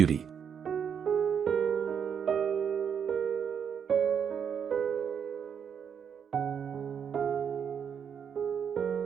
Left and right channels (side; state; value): left; quieter; 7.5 dB